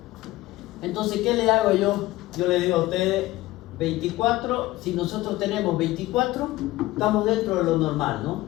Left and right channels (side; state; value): right; quieter; 17.6 dB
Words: Entonces, ¿qué le hago yo? Yo le digo a ustedes 24, si nosotros tenemos 24, estamos dentro de lo normal, ¿no?